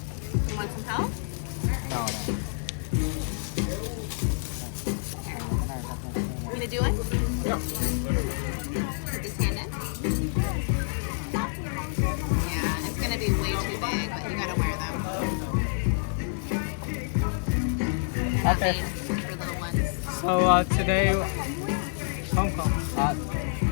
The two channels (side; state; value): right; silent; digital silence